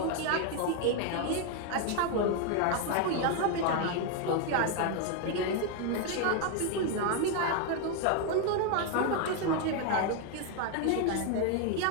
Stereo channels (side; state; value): both; different; correlation 0.01